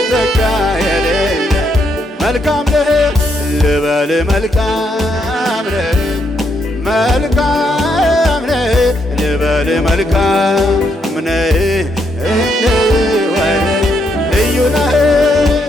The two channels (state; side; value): normal; both; correlation 0.77